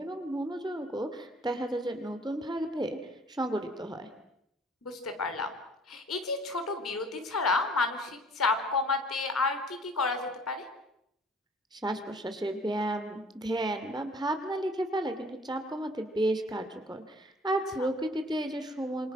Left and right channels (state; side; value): normal; both; correlation 0.54